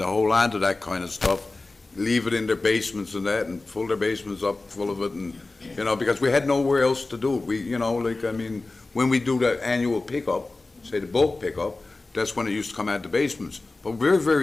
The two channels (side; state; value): right; quieter; 3.3 dB